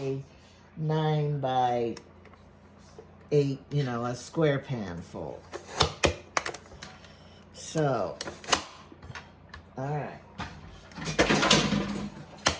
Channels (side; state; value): both; identical; correlation 1.00